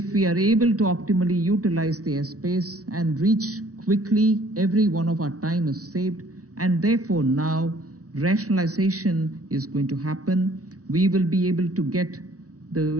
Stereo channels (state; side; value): late; left; 0.66 ms